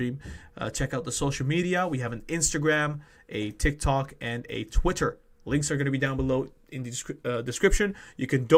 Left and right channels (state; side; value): identical; both; correlation 1.00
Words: Check out the social media. We have an Instagram, a TikTok, and a Twitter. Links are going to be down below in the description. You can